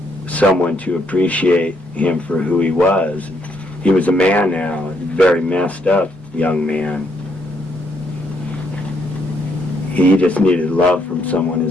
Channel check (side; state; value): both; normal; correlation 0.73